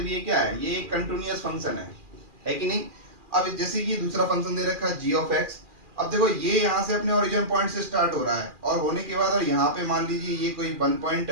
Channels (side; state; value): left; late; 2.4 ms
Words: ये क्या है? ये एक कंटिन्यूअस फंक्शन है कि नहीं? अब जैसे कि दूसरा फंक्शन दे रखा है जी ऑफ एक्स। अब देखो ये यहाँ से अपने ओरिजिन पॉइंट से स्टार्ट हो रहा है, और होने के बाद और यहाँ पे मान लीजिए ये कोई 1 पॉइंट